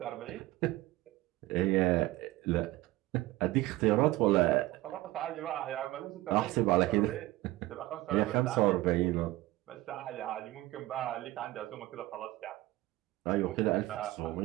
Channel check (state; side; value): quieter; left; 18.1 dB